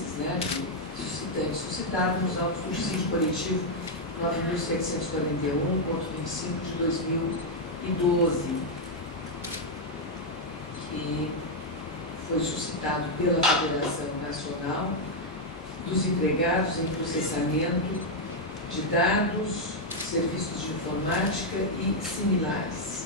suscitados nos autos do dissídio coletivo 9.741/25 de 2012, que foi suscitado pela Federação Nacional dos Empregados em Processamento de Dados, Serviços de Informática e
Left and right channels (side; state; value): both; normal; correlation -0.01